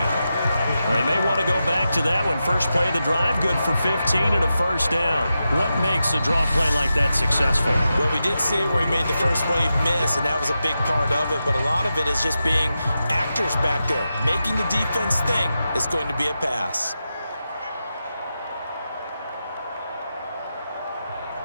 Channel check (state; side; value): inverted; both; correlation -0.90